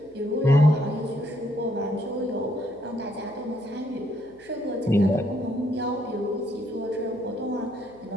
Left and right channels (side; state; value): left; noise; hum, 30 dB below the sound